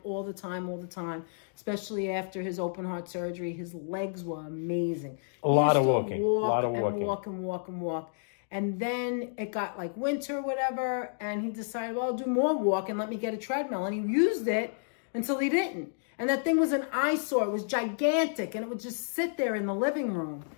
especially after his open heart surgery. His legs were amazing. A lot of walking. Walk. And then it got like winter or whatever, and he decided, well, I'll do more walk and let me get a treadmill. And he used it until he didn't. And that thing was an eyesore. It was gigantic, and it would just sit there in the living room.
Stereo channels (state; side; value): silent; right; digital silence